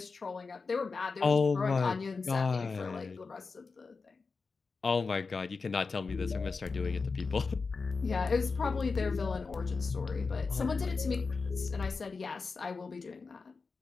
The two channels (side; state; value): right; quieter; 4.5 dB